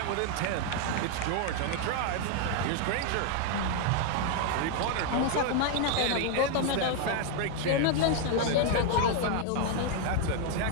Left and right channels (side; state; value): both; different; correlation 0.01